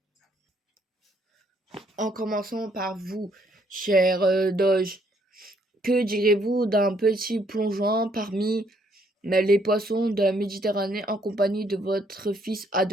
En commençant par vous, cher Doge, que direz-vous d'un petit plongeon parmi les poissons de la Méditerranée en compagnie de votre fils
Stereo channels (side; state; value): both; normal; correlation 0.69